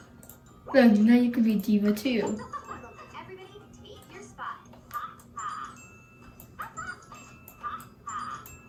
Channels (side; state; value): both; identical; correlation 1.00